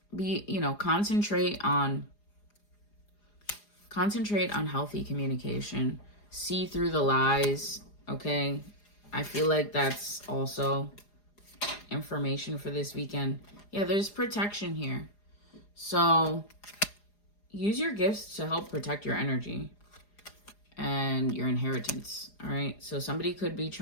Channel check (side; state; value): right; late; 4.9 ms